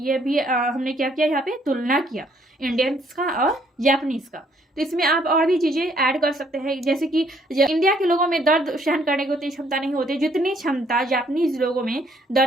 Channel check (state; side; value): normal; both; correlation 0.66